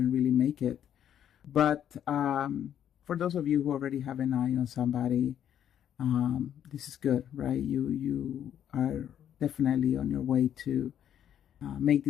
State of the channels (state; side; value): quieter; right; 9.9 dB